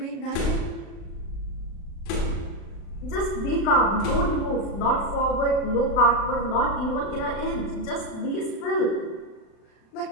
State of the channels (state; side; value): late; right; 36 ms